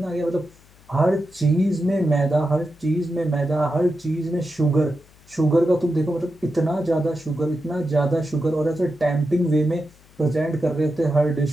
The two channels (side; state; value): left; noise; hum, 27 dB below the sound